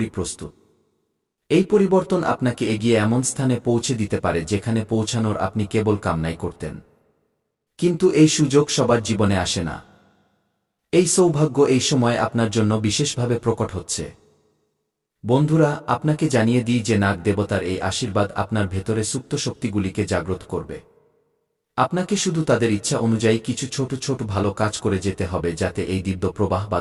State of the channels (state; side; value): identical; both; correlation 1.00